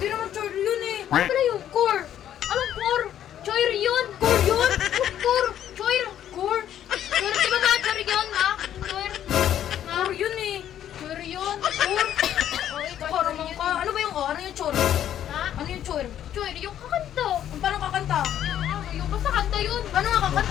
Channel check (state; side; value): quieter; right; 10.8 dB